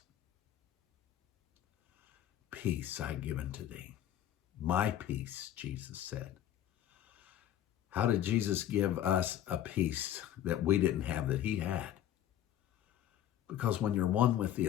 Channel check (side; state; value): right; quieter; 11.4 dB